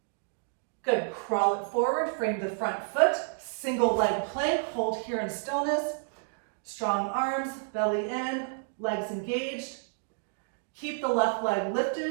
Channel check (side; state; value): left; silent; digital silence